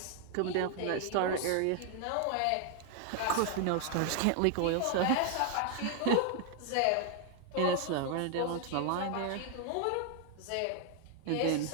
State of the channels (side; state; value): both; different; correlation 0.00